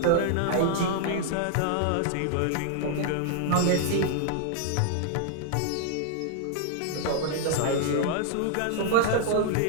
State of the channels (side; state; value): both; different; correlation -0.01